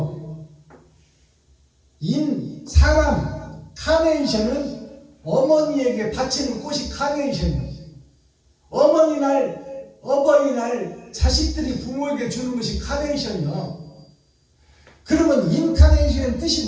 사람, 카네이션은 어머니에게 바치는 꽃이 카네이션이에요. 어버이날 자식들이 부모에게 주는 것이 카네이션이요. 그러면 인카네이션 뜻이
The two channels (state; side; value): identical; both; correlation 1.00